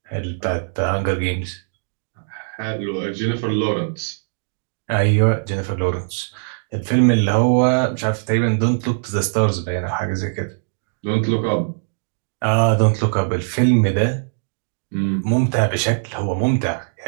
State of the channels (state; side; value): silent; left; digital silence